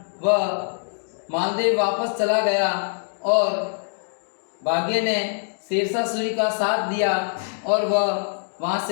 वह मालदेव वापस चला गया और भाग्य ने शेरशाह सूरी का साथ दिया और वह वहाँ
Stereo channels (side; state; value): right; silent; digital silence